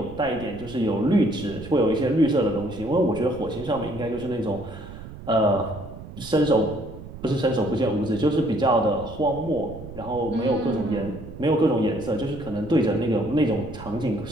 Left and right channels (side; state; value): right; noise; rumble, 14 dB below the sound